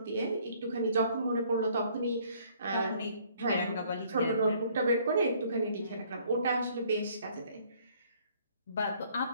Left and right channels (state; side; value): inverted; both; correlation -0.61